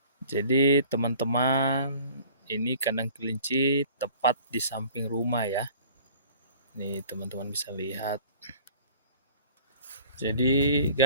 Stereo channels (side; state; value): both; inverted; correlation -0.48